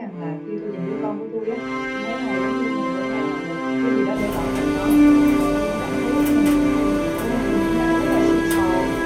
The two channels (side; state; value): both; identical; correlation 1.00